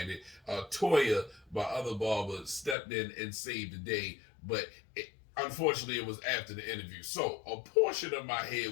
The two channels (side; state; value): right; drops out; at 2.8 s